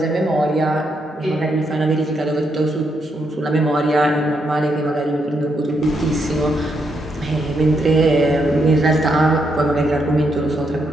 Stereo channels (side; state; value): both; normal; correlation 0.79